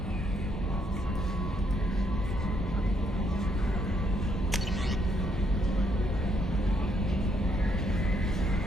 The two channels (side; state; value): both; normal; correlation 0.73